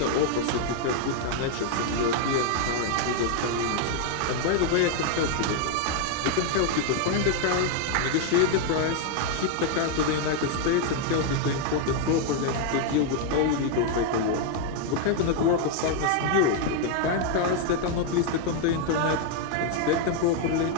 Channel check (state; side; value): different; both; correlation 0.00